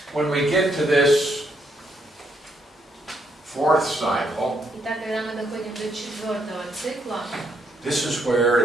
when we get to this fourth cycle, Итак, когда мы доходим до 4-го цикла, this is where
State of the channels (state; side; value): normal; both; correlation 0.75